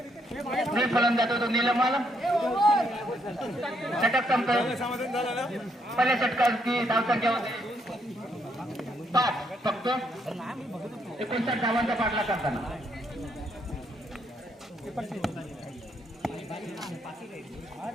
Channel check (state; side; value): normal; both; correlation 0.74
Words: फलंदाज होतो नीलम षटक संपतो पहिल्या षटकाची धावसंख्या होती 5 फक्त 59 धावांचा पाठला करताना